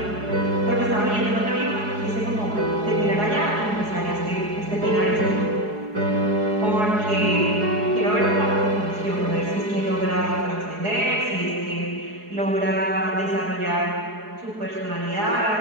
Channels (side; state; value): left; late; 4.8 ms